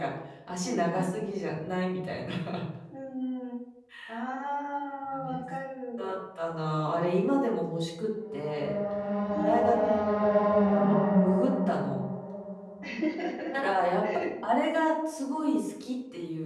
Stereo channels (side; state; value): both; identical; correlation 1.00